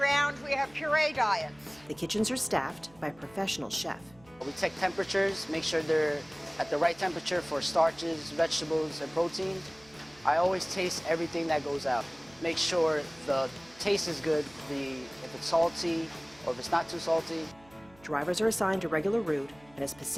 we have puree diets. The kitchens are staffed by a professional chef. We take temperatures, make sure they're at the right temperature for starches, vegetables, and protein. I always taste everything that goes out. Make sure the taste is good, if it's salty or if it's not too salty. Drivers are assigned a regular route and a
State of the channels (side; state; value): right; noise; hum, 27 dB below the sound